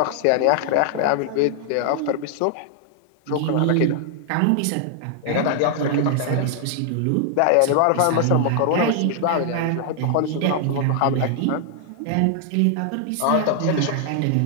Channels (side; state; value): both; different; correlation 0.00